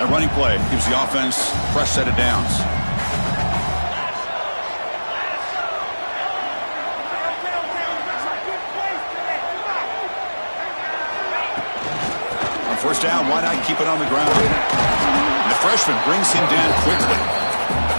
A running play gives the offense a fresh set of downs. On first down, why not keep it on the ground? And the freshman brings him down quickly.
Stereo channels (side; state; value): both; inverted; correlation -1.00